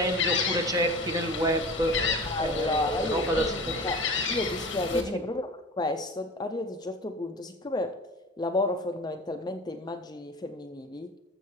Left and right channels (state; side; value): normal; both; correlation 0.36